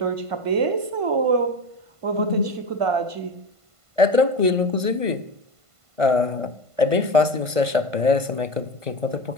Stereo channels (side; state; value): left; late; 1.5 ms